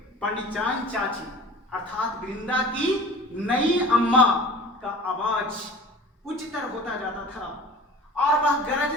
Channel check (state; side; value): normal; both; correlation 0.42